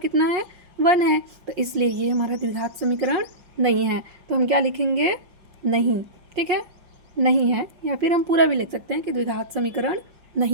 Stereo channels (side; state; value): left; late; 5.5 ms